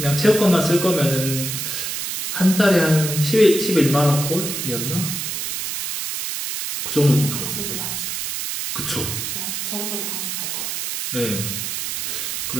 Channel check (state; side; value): noise; right; hiss, 3 dB below the sound